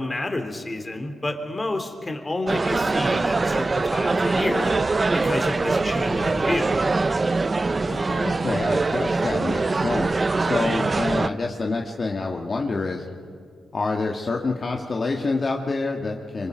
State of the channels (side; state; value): both; normal; correlation 0.93